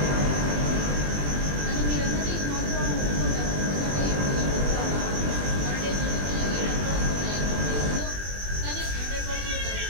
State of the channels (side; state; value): left; late; 21 ms